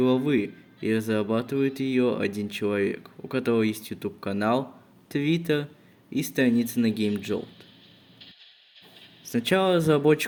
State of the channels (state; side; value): identical; both; correlation 1.00